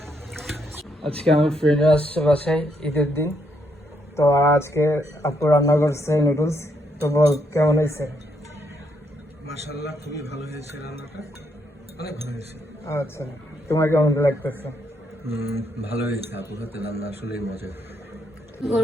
আজকে আমার ফ্রেন্ড আসছে বাসায় ঈদের দিন, তো আজকে আপু রান্না করছে নুডলস। তো বল কেমন হয়েছে? মাশাআল্লাহ, খুবই ভালো হয়েছে, রান্নাটা অনেক ভালো হয়েছে। আচ্ছা, তোমার কেমন লাগতেছে? ভালো হয়েছে, আপুর হাতে রান্না আসলেই মজা।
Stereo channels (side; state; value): both; normal; correlation 0.76